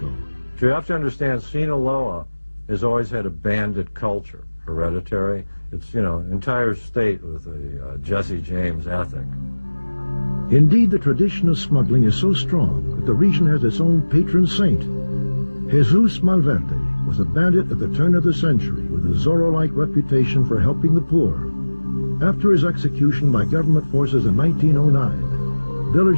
You have to understand, Sinaloa has always had a bandit culture, hereditary. It's, you know, entire state with a Jesse James ethic. Indeed, the tradition of smuggling is so strong that the region has its own patron saint. Jesus Malverde was a bandit at the turn of the century with a Zorro-like reputation for helping the poor. After his execution by government forces in 1909,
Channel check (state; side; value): inverted; both; correlation -1.00